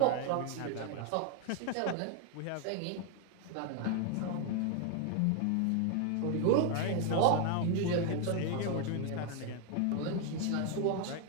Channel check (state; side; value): different; both; correlation 0.01